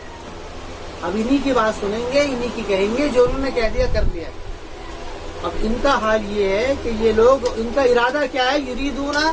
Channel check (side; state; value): both; identical; correlation 1.00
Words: اب انہی کی بات سنیں گے، انہی کی کہیں گے جو انہوں نے کہہ دیا کر لیا۔ اب ان کا حال یہ ہے کہ یہ لوگ، ان کا ارادہ کیا ہے، یریدون